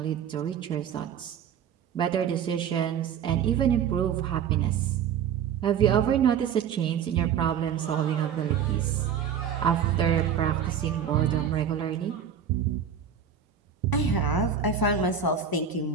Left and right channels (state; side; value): quieter; left; 7.9 dB